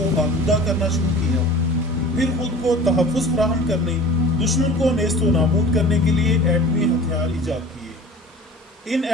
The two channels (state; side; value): normal; both; correlation 0.41